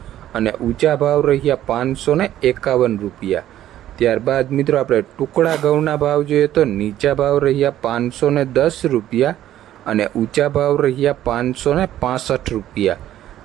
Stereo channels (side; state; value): left; quieter; 12.6 dB